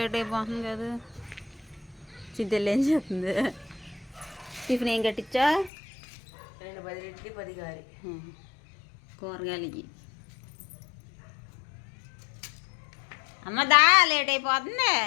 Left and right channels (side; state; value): right; drops out; at 5.7 s